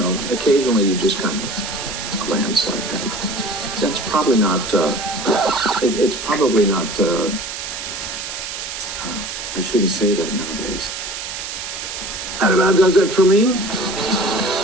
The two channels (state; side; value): noise; right; hiss, 7 dB below the sound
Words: occasionally you just kind of glance like that. That's probably not, it's probably not, I shouldn't say that nowadays. That about does it for me.